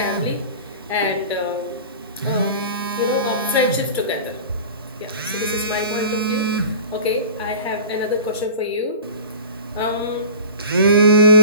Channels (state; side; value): inverted; both; correlation -0.37